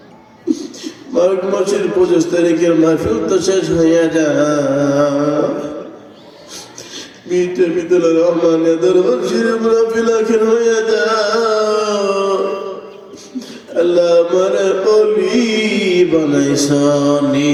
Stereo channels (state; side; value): identical; both; correlation 1.00